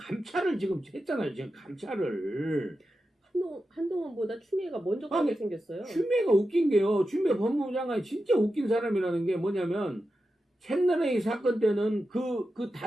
지금 했잖아요. 지금 감찰을. 한동훈보다 추미애가 먼저 가게 생겼어요. 추미애가 웃긴 게요. 추미애 법무부 장관이 진짜 웃긴 사람이라는 게 뭐냐면 채널A 사건 때는 그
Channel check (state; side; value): normal; both; correlation 0.90